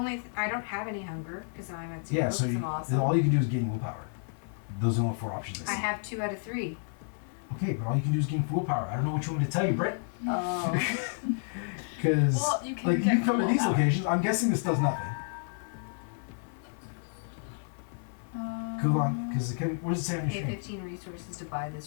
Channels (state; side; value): silent; right; 56 dB below the other